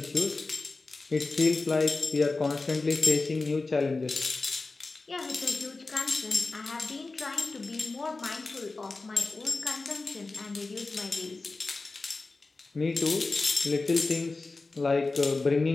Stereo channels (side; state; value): right; quieter; 3.6 dB